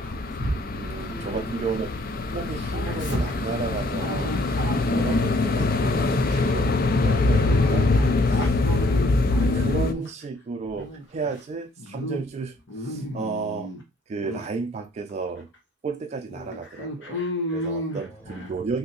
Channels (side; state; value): both; normal; correlation 0.61